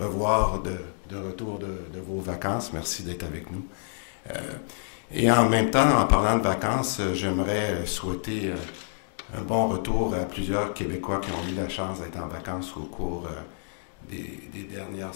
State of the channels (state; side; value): silent; right; digital silence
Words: de retour de vos vacances. Merci d'être avec nous. Et en même temps, en parlant de vacances, j'aimerais souhaiter un bon retour à plusieurs Québécois qui ont eu la chance d'être en vacances au cours des dernières